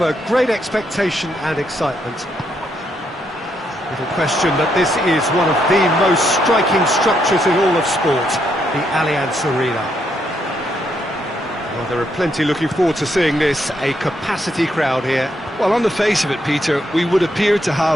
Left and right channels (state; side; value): normal; both; correlation 0.77